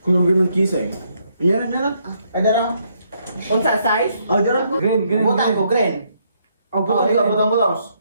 Kulog ng kisa eh. Yan na lang. Ada ra. Unsa size? Oh, dra. Green. Butang ko green. Oh, butang mo daws.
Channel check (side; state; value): both; inverted; correlation -0.73